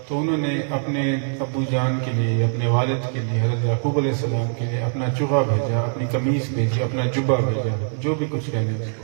تو انہوں نے اپنے ابو جان کے لیے، اپنے والد کے لیے، حضرت یعقوب علیہ السلام کے لیے اپنا چوغا بھیجا، اپنی قمیص بھیجی، اپنا جبہ بھیجا، جو بھی کچھ کہنے اس کو،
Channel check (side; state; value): left; silent; 64 dB below the other